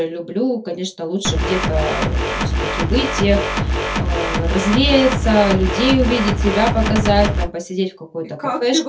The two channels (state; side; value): identical; both; correlation 1.00